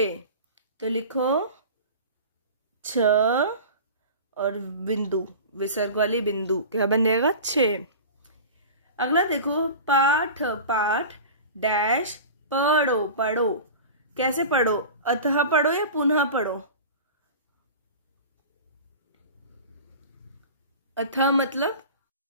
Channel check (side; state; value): both; inverted; correlation -0.35